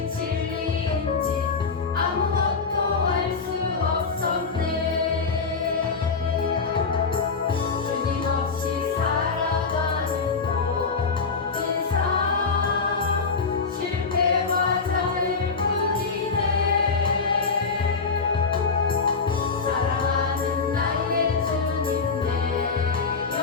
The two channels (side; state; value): right; quieter; 4.8 dB